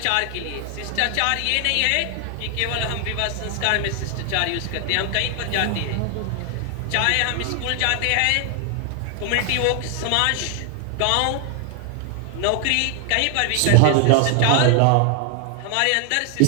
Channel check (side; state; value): both; different; correlation 0.00